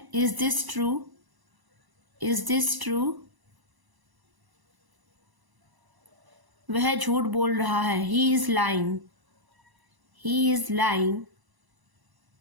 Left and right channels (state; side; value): late; left; 1.0 ms